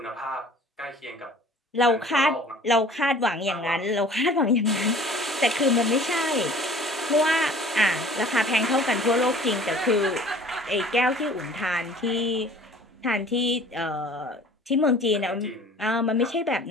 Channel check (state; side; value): normal; both; correlation 0.49